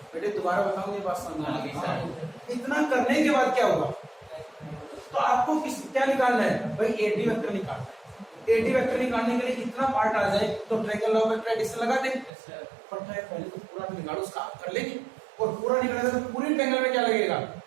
बेटे? दोबारा बताऊं ये बात समझ में आ गई? इतना करने के बाद क्या होगा, तो आपको क्या निकालना है भाई एडी वेक्टर निकालना है। एडी वेक्टर निकालने के लिए इतना पार्ट आ जाए तो ट्रायंगल लॉ वेक्टर एडिशन लगा दे, पर पहले तो पूरा निकालो, उसका आप कर लेंगे, और पूरा निकालेगा तो पूरी ट्रायंगल में क्या लगेगा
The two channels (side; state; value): left; drops out; at 12.3 s